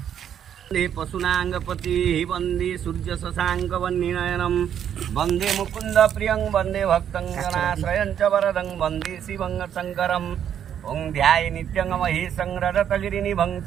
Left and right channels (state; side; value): quieter; left; 9.3 dB